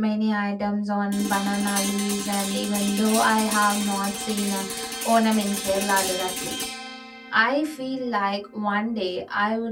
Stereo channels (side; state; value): both; identical; correlation 1.00